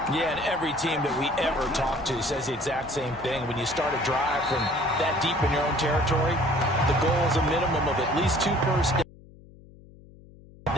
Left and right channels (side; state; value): left; noise; hum, 22 dB below the sound